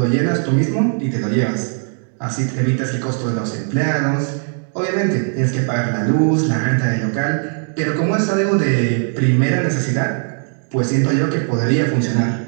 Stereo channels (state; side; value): silent; left; 58 dB below the other